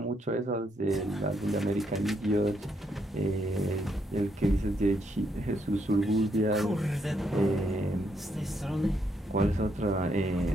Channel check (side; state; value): both; normal; correlation 0.76